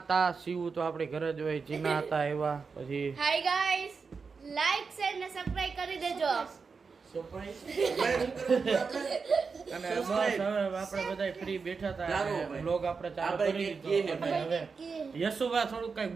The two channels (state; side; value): quieter; left; 5.1 dB